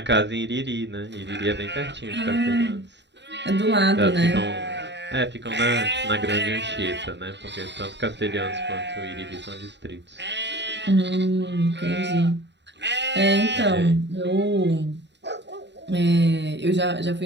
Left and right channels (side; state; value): left; late; 0.51 ms